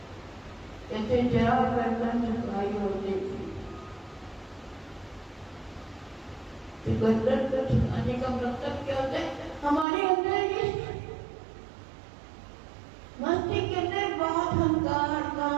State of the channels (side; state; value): left; drops out; at 9.9 s